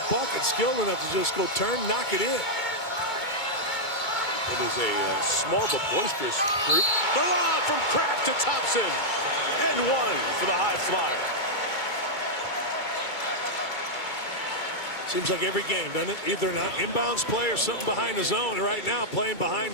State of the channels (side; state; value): right; late; 2.3 ms